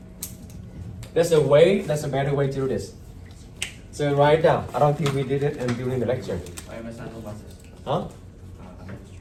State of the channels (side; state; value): both; identical; correlation 1.00